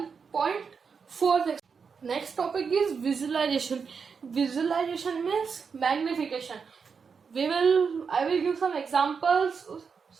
Next topic is visualization. Visualization means magnification. I will give some examples.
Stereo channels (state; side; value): quieter; left; 5.8 dB